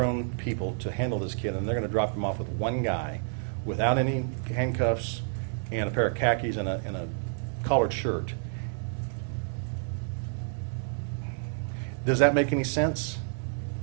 people to handle this kid and they're going to drop him off with one guy without any handcuffs and a pair of khakis and a collared shirt, does that make any sense?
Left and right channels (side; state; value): left; silent; 58 dB below the other